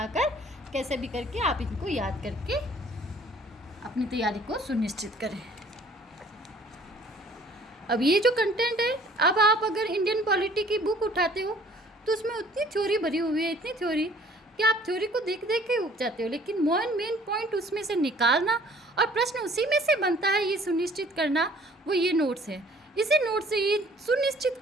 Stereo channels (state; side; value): normal; both; correlation 0.55